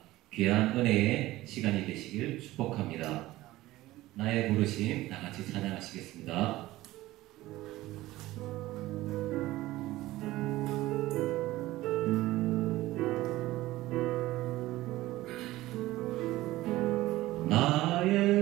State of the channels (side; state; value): left; quieter; 17.2 dB